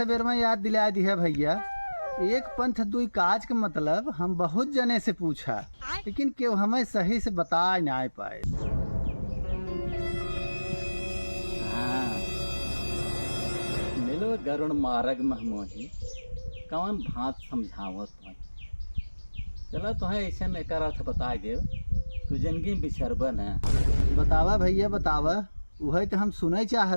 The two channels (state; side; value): inverted; both; correlation -1.00